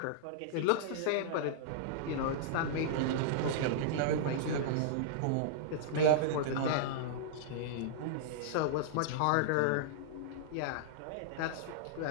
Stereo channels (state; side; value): different; both; correlation -0.02